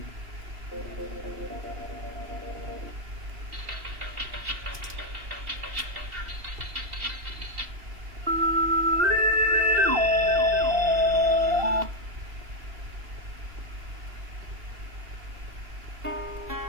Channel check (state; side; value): late; left; 2.7 ms